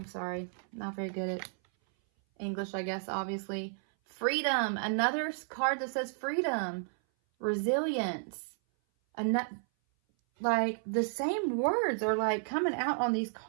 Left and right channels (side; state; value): left; silent; 56 dB below the other